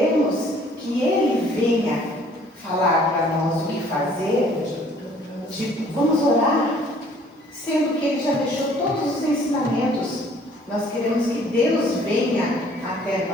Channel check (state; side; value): normal; both; correlation 0.57